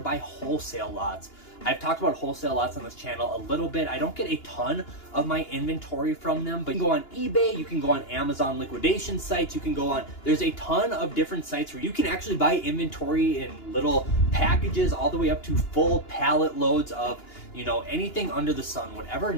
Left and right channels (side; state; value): right; late; 2.9 ms